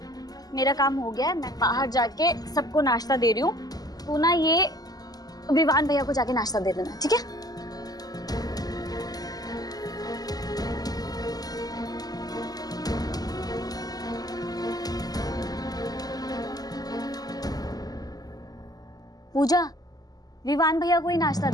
मेरा काम हो गया है, मैं बाहर जाके सबको नाश्ता दे रही हूँ। तू ना ये विवान भैया को जाके नाश्ता दे देना, ठीक है? पूजा, विवान भैया को ही नाश्ता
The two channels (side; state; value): right; late; 0.18 ms